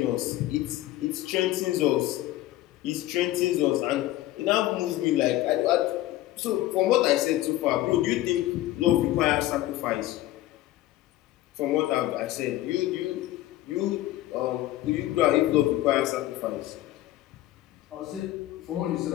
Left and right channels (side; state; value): right; quieter; 15.4 dB